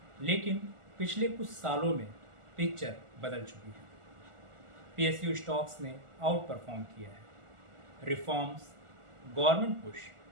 लेकिन पिछले कुछ सालों में पिक्चर बदल चुकी है। पीएसयू स्टॉक्स ने आउट परफॉर्म किया है। रिफॉर्म्स, गवर्नमेंट पुश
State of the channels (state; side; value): late; left; 1.4 ms